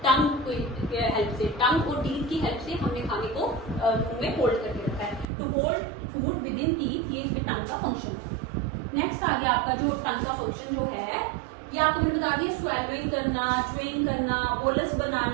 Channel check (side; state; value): left; drops out; at 5.2 s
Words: टंग की हेल्प से, टंग और टीथ की हेल्प से हमने खाने को मुंह में होल्ड करके रखा है। तो hold food within teeth, ये इसमें टंग का फंक्शन है। नेक्स्ट आ गया आपका जो टंग का फंक्शन जो है, ये आपको मैंने बता दिया, स्वेलविंग करना, च्यूइंग करना, बोलस